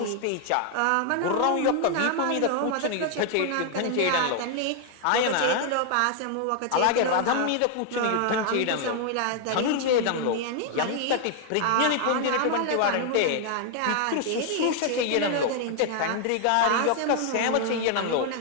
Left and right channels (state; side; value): different; both; correlation 0.00